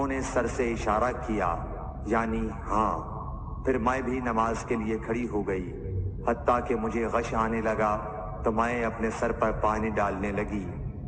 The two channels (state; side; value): identical; both; correlation 1.00